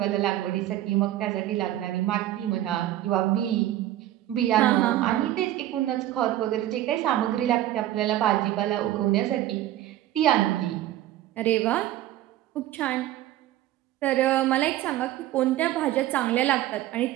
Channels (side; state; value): left; quieter; 13.8 dB